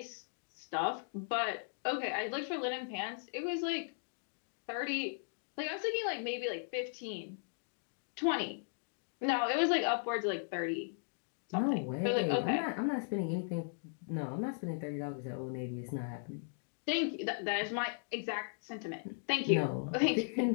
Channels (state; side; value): silent; right; digital silence